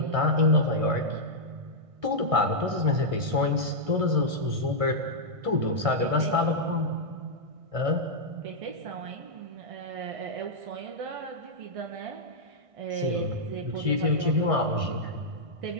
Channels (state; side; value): late; left; 1.6 ms